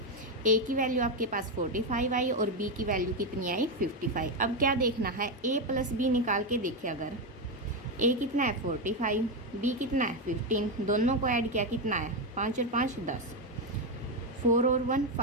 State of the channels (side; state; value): both; normal; correlation 0.08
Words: A की वैल्यू आपके पास 45 आई और B की वैल्यू कितनी आई 55। अब क्या देखना है A प्लस बी निकाल के देखिए, अगर A कितना है 45, B कितना है 15, दोनों को ऐड किया कितना है 5 और 5 10, 4 और 1